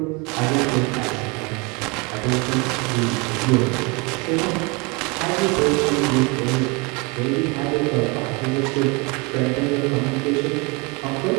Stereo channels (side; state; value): left; quieter; 28.2 dB